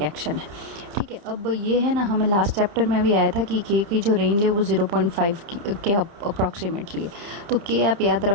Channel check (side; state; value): left; late; 30 ms